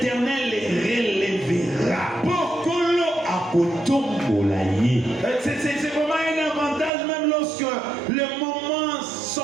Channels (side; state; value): left; drops out; at 6.9 s